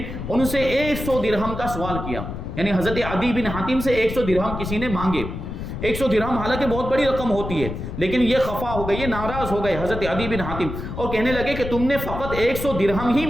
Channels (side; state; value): left; noise; rumble, 7 dB below the sound